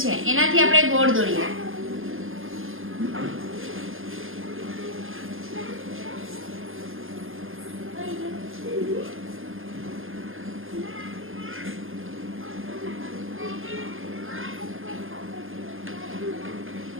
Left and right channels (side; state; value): left; late; 0.59 ms